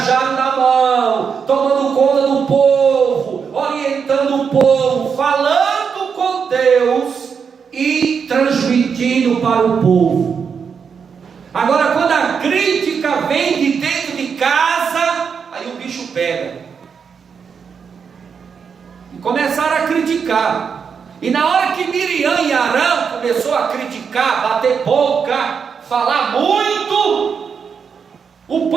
na mão, tomando conta do povo, orientando o povo, falando com Deus e transmitindo para o povo. Agora, quando a crítica vem de dentro de casa, aí o bicho pega. E começaram a criticar. E na hora que Miriam e Arão começou a criticar, bater boca, falar muito, o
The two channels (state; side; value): quieter; left; 6.4 dB